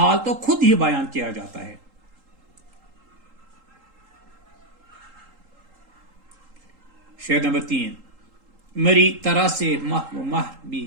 तो खुद ही बयान किया जाता है। शेर नंबर 3, मेरी तरह से मह भी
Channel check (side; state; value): left; late; 3.8 ms